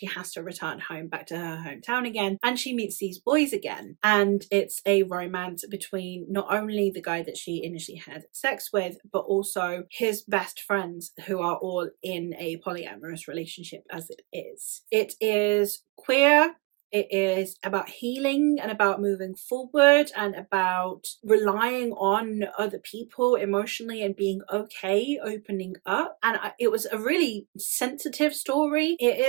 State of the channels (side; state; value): left; quieter; 26.0 dB